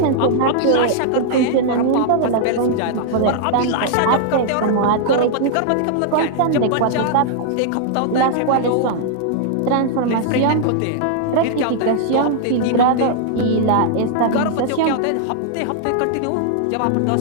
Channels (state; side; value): different; both; correlation -0.01